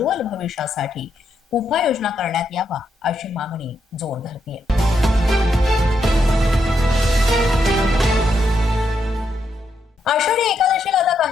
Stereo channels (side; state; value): both; normal; correlation 0.80